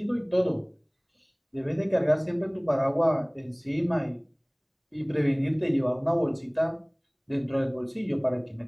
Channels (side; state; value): both; identical; correlation 1.00